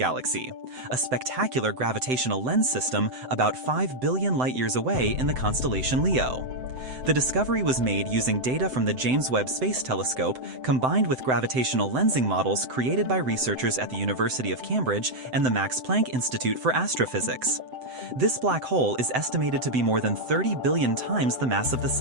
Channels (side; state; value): left; late; 7.8 ms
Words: a spectacular gravitational lens system about 5 billion light-years away in the constellation Leo. The discovery was made using data from the James Webb Space Telescope combined with gravitational lensing models created by researchers at the University of Cambridge and the Max Planck Institute for Astrophysics. This black hole is estimated to be more than 30 billion times the mass of the